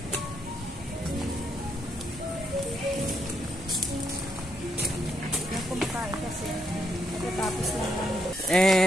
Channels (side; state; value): both; normal; correlation 0.77